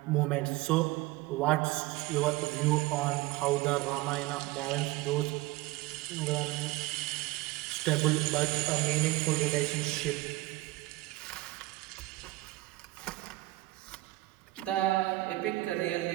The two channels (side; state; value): left; quieter; 19.8 dB